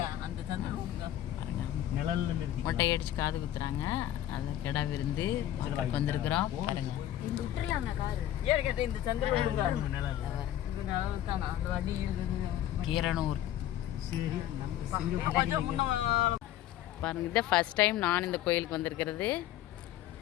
மொட்டை அடிச்சு காது குத்துறாங்க. அது கெடா விருந்து வந்திருக்கிறோம். பாருங்க, கீரனூர். பாருங்க, இதான் ஃபர்ஸ்ட் டைம் நான் இந்த கோயிலுக்கு வந்திருக்கிறது.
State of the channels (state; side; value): quieter; right; 12.4 dB